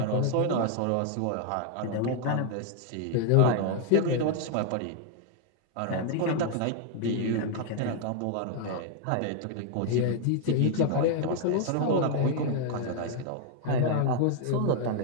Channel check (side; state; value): both; different; correlation 0.00